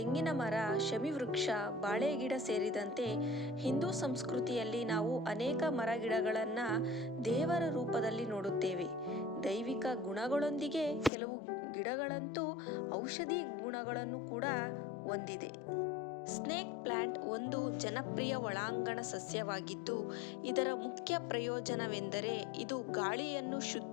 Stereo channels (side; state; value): right; drops out; at 11.1 s